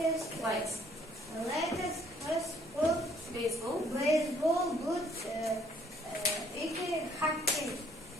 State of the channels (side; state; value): both; normal; correlation 0.63